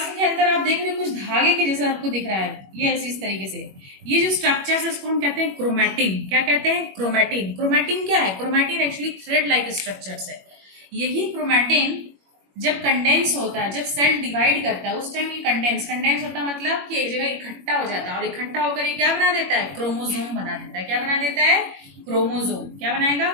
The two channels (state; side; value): late; left; 21 ms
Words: के अंदर आप देख रहे हो कुछ धागे के जैसा आपको दिख रहा है. ये ऐसी इस तरीके से ये जो स्ट्रक्चर है उसको हम कहते हैं क्रोमैटिन. क्या कहते हैं? क्रोमैटिन. क्रोमैटिन क्या है? Chromatin actually thread like structures है. यही क्रोमैटिन जब कंडेंस होता है, जब सेल डिवाइड करता है उस टाइम ये कंडेंस होता है मतलब कि एक जगह इकट्ठा हो जाता है और इकट्ठा होकर ये क्या बना देता है? क्रोमोसोम बना देता है. क्या बना देता है? क्रोमोसोम. क्या बनाएगा?